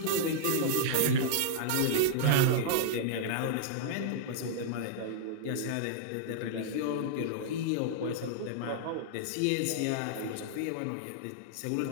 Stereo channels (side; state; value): both; different; correlation -0.01